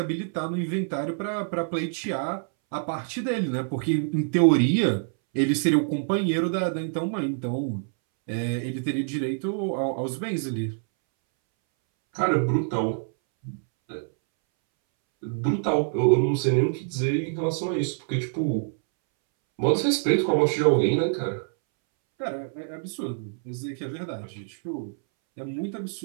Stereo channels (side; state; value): left; silent; 61 dB below the other